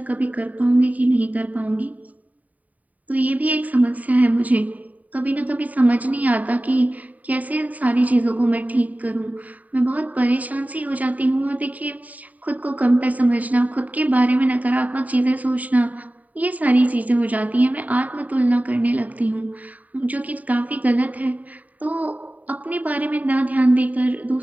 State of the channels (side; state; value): left; late; 0.073 ms